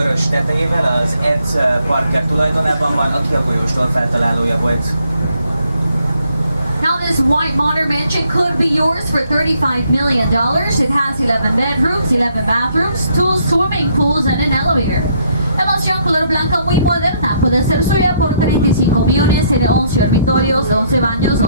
tetejével az Ed Parker tulajdonában van, aki a folyóstól feltalálója volt. Now this white modern mansion could be yours for $35 million. It has 11 bedrooms, 11 bathrooms, 2 swimming pools and an elevator. La mansión color blanca muy moderna puede ser suya por 35 millones, tiene 11 dormitorios, 11 baños,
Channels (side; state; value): both; inverted; correlation -0.70